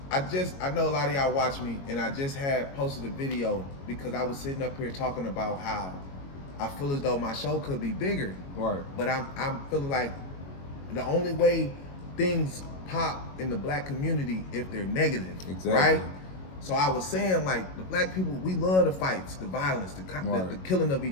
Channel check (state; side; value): late; right; 22 ms